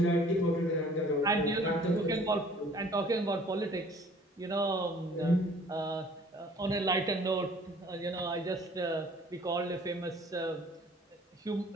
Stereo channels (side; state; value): both; normal; correlation 0.53